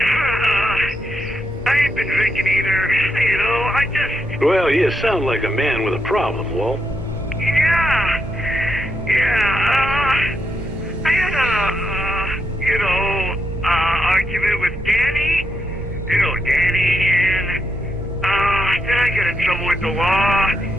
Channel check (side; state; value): both; normal; correlation 0.82